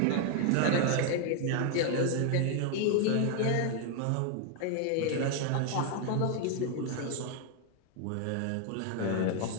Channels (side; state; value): both; different; correlation 0.01